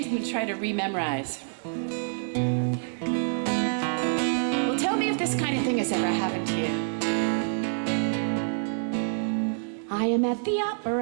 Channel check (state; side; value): silent; left; digital silence